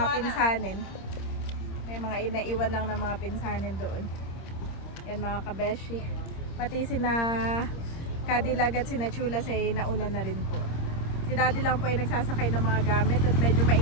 pinsanin. May mga inaiwan lang ng mga pinsanin doon. Yan mga kabeshi. Pati sina Cadillac at sina Chulas ay nauna na rin po. Si Daddy lang po ay nagsasakay ng mga gamit at medyo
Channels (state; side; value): late; right; 26 ms